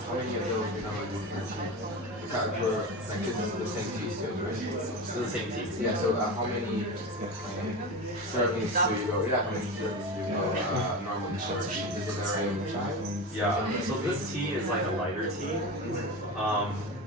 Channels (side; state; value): both; normal; correlation 0.24